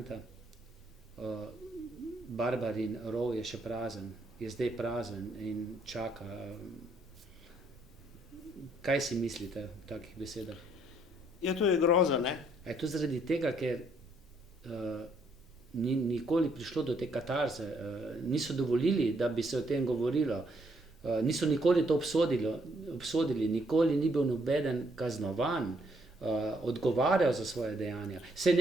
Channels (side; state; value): both; normal; correlation 0.70